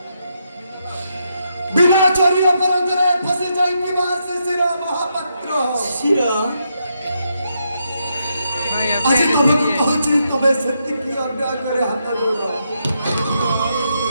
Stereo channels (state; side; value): inverted; both; correlation -0.80